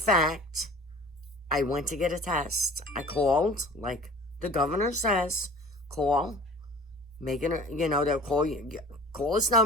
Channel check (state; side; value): normal; both; correlation 0.43